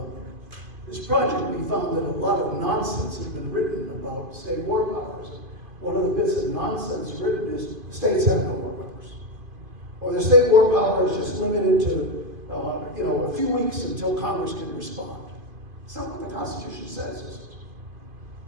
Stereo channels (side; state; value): left; late; 2.5 ms